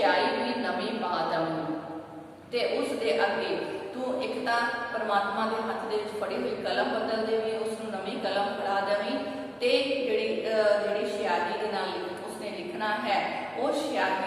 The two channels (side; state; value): both; identical; correlation 1.00